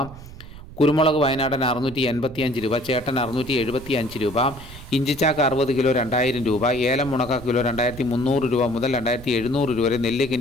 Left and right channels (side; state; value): right; noise; rumble, 15 dB below the sound